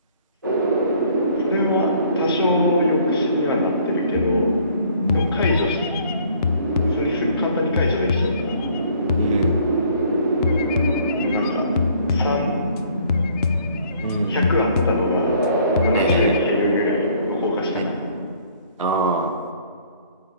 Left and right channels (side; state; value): both; inverted; correlation -0.59